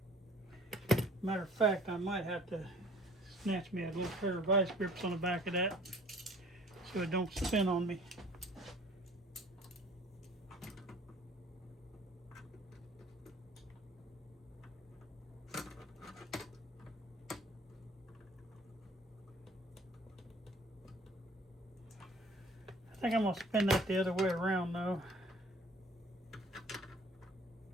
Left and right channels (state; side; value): normal; both; correlation 0.52